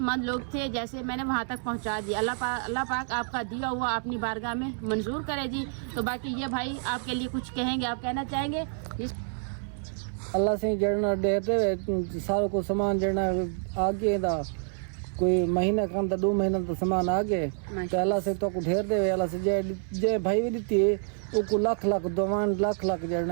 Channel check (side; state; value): left; silent; 59 dB below the other